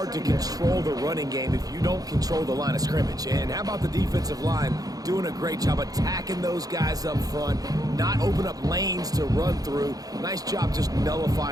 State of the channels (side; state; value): left; late; 0.18 ms